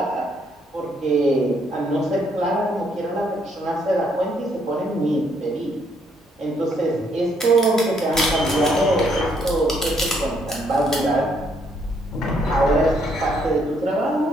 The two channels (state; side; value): normal; both; correlation 0.70